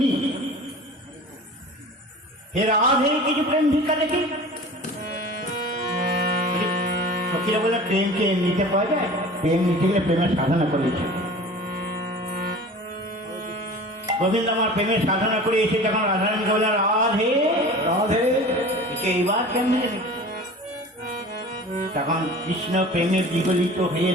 হে রাধে কিছু প্রেম ভিক্ষা দেখি। সখীরা বললেন প্রেমকে নিতে পাওয়া যায়, প্রেম নিতে গেলে প্রেমের সাধনা করেছে। গোবিন্দ আমার প্রেমের সাধনা করে এসে যখন রাধারানীকে বললেন রাধে রাধে এইবার কেমনে, তখন কৃষ্ণ প্রেমের বিগলিত হয়ে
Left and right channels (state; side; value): normal; both; correlation 0.39